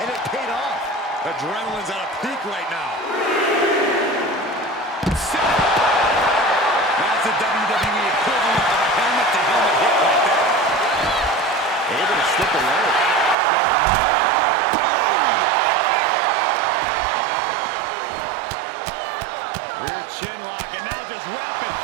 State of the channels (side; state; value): left; drops out; at 13.4 s